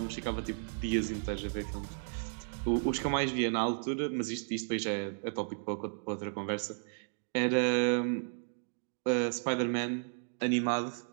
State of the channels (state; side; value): silent; left; digital silence